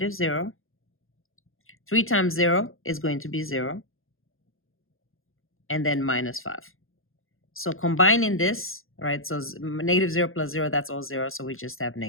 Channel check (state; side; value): late; right; 0.60 ms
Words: 3 times 0 is going to be 0. And then -5. So combining this, right, so -0 plus 0, that's all 0. So we just have